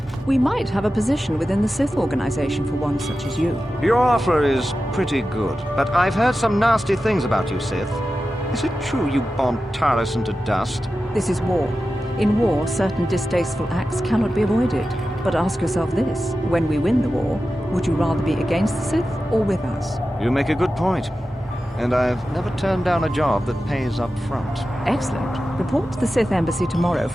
We might have a position within the Sith organization for one such as you. Your offer is pretty good, but I've heard some nasty things about you, Sith. Is it true you bombed Taris into dust? This is war. In war, certain distasteful acts cannot be avoided. But ask yourself this, when we win the war, would you rather be against the Sith or with us? You make a good point. And I've never turned down a job that pays up front. Excellent. Report to the Sith Embassy tomorrow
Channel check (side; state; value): both; normal; correlation 0.93